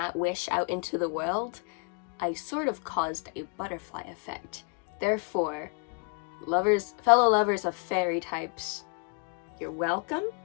wish out into the world, I sort of caused a butterfly effect. Therefore, fellow lovers of fairy types, you're welcome.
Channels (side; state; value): right; quieter; 34.9 dB